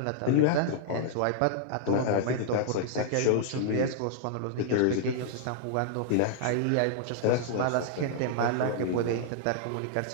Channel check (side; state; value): both; different; correlation -0.01